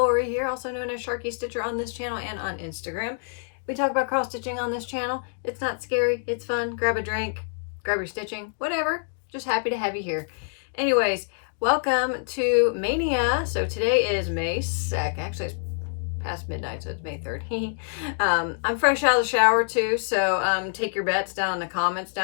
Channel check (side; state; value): right; silent; digital silence